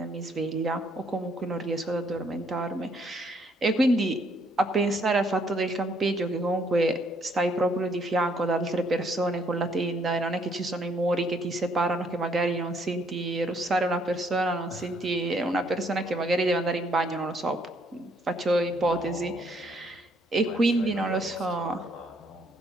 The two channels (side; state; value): both; normal; correlation 0.68